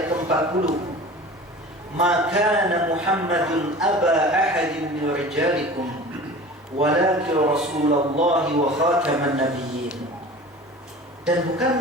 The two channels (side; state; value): both; normal; correlation 0.39